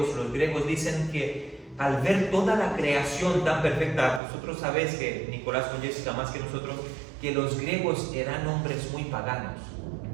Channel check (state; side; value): drops out; left; at 4.2 s